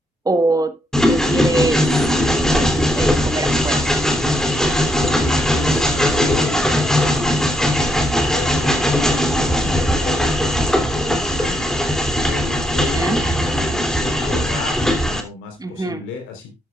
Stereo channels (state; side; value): normal; both; correlation 0.78